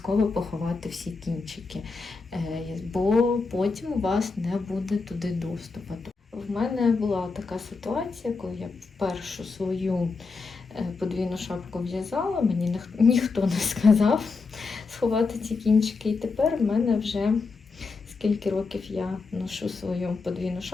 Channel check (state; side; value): quieter; right; 4.3 dB